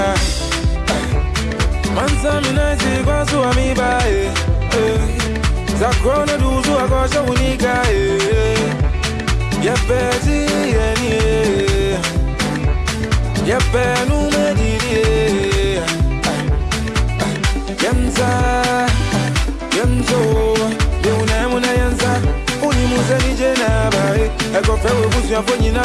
Mansa mi naisi kwa suwa mi bae. Zakrona duzu akosha unika Yepeti yeni Yepenu mediri Yemza Yemzo Deunemu na yenza Unimuze nije nabae Eko fewe busu ya fonyi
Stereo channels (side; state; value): both; identical; correlation 1.00